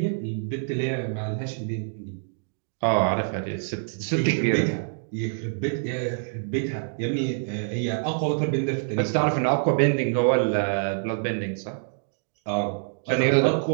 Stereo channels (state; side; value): silent; left; digital silence